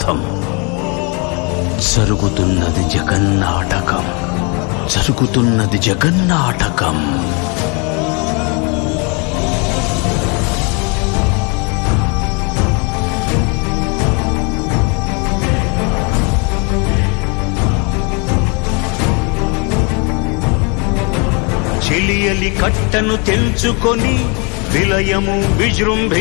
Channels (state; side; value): quieter; right; 32.6 dB